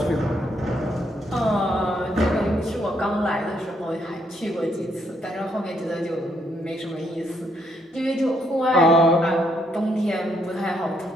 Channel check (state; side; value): normal; both; correlation 0.73